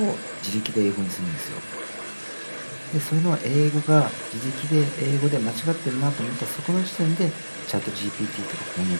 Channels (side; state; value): both; inverted; correlation -1.00